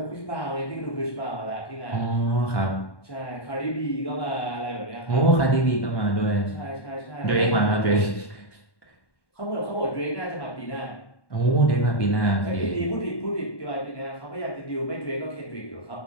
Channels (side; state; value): right; late; 1.1 ms